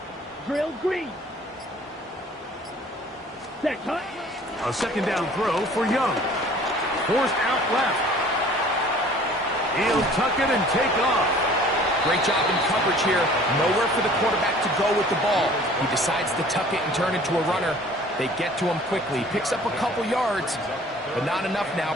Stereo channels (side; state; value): both; normal; correlation 0.50